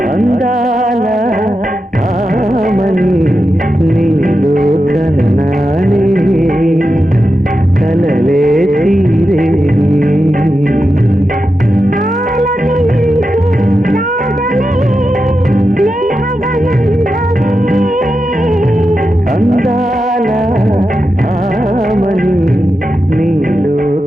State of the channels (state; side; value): normal; both; correlation 0.89